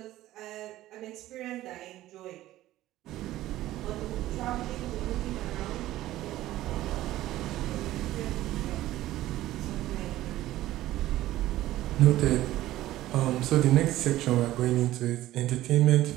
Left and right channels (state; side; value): quieter; left; 15.1 dB